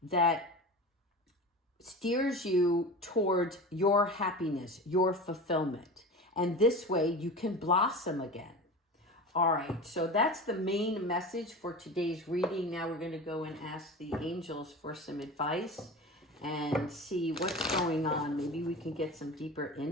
that steers you towards your happiness, your fulfillment. And this way you can blossom again. All right, so that's the main message for today's reading. Now we're going to go and ask the angels for some advice and see what's going on. Maybe we can get some deeper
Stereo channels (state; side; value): normal; both; correlation 0.31